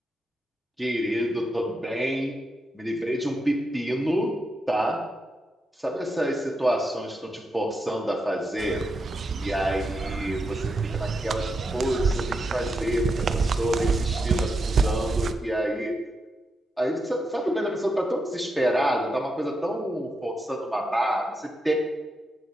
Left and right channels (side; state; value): both; normal; correlation 0.84